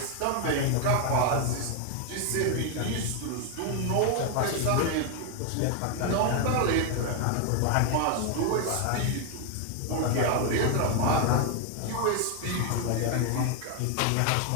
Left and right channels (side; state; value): both; different; correlation 0.01